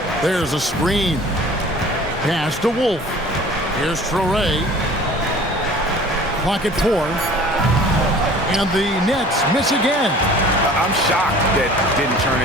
There's a screen. Pass to Wolf. Here's Traore. Clock at 4. And the Nets miss again. I'm shocked that didn't turn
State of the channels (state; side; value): normal; both; correlation 0.46